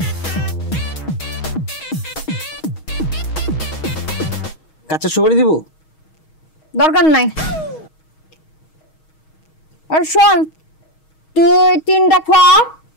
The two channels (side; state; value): right; late; 6.3 ms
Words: কাঁচা সুপারি দিব? দরকার নাই। আর শোন, তুই 3টা খোয়া,